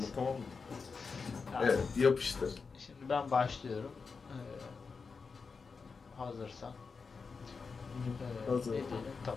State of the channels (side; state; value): right; quieter; 5.0 dB